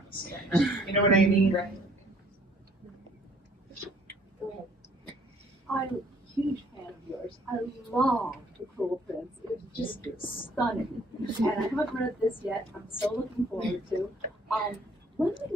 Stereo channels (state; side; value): normal; both; correlation 0.60